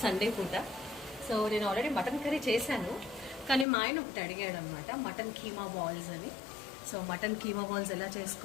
సండే పూట. సో నేను ఆల్రెడీ మటన్ కర్రీ చేశాను, కానీ మా ఆయన ఒకటి అడిగాడు అనమాట, మటన్ కీమా బాల్స్ అని. సో మటన్ కీమా బాల్స్ ఎలా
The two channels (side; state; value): right; drops out; at 3.7 s